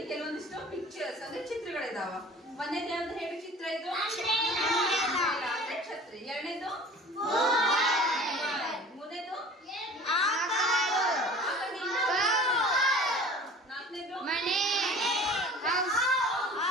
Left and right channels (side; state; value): both; normal; correlation 0.43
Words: ಕೆಲವೊಂದಿಷ್ಟು ಪಿಕ್ಚರ್ಸ್ ಅಂದ್ರೆ ಚಿತ್ರಗಳಿದಾವ. ಒಂದೇದು ಯಾವ್ದು ಹೇಳಿ ಚಿತ್ರ ಇದು, ಅಂದ್ರೆ ಛತ್ರಿ. ಎರಡನೇದು ಮೂರನೇದು ನಾಲ್ಕನೇದು